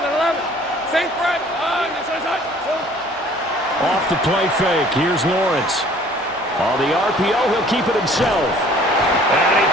Sink right. Off the play fake. Here's Lawrence. On the RPO, he'll keep it himself. And he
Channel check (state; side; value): noise; right; hum, 27 dB below the sound